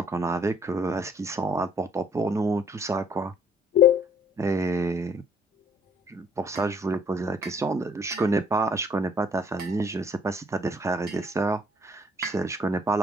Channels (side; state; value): both; normal; correlation 0.61